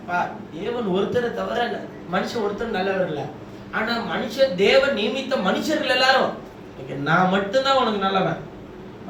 தேவன் ஒருத்தரை தவிர மனுஷன் ஒருத்தர் நல்லவர் இல்ல. ஆனா மனுஷன் தேவன் நியமித்த மனுஷர்கள் எல்லாரும் நான் மட்டும்தான் உனக்கு நல்லவன்,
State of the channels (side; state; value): both; identical; correlation 1.00